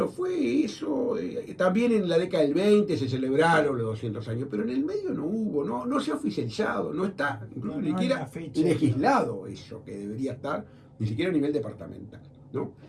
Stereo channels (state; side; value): identical; both; correlation 1.00